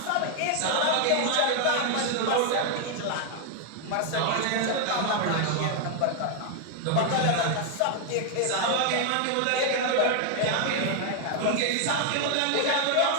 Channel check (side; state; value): both; different; correlation 0.00